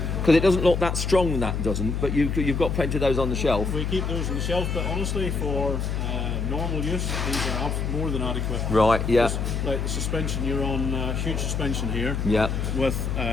Because it doesn't look that strong, that doesn't, but you've got plenty of those on the shelf. We keep those on the shelf, but honestly, for normal use, these are more than adequate. Right, yeah. Like the suspension, you're on huge suspension here. Yeah. With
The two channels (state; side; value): noise; left; hum, 1 dB below the sound